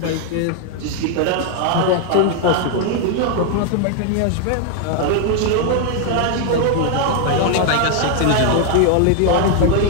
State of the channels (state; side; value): different; both; correlation 0.00